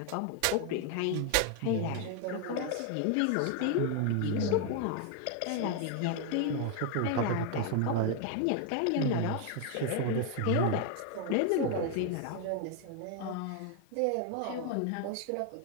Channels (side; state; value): both; different; correlation 0.01